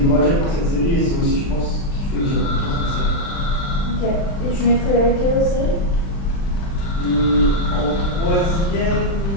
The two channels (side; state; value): right; late; 36 ms